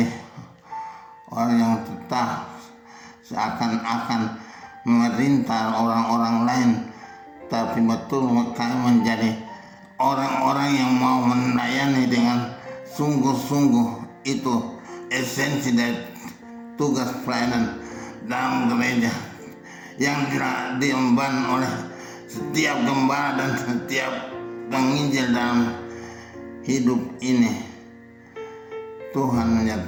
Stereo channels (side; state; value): both; identical; correlation 1.00